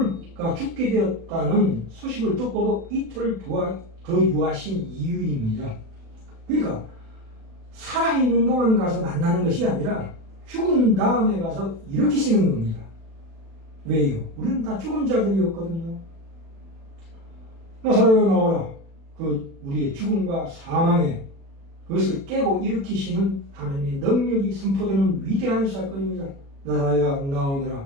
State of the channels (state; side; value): late; left; 36 ms